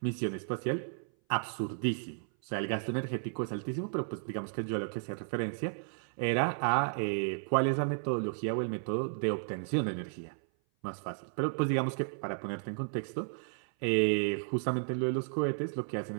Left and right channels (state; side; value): silent; left; 55 dB below the other